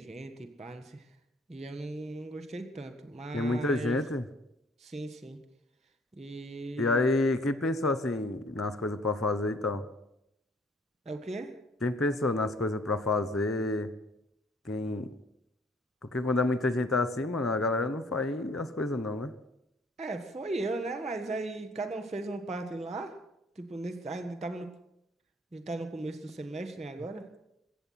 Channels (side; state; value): both; normal; correlation 0.58